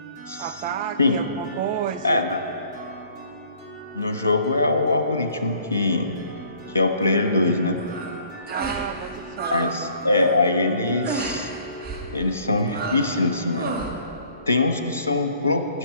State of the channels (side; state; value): both; inverted; correlation -0.58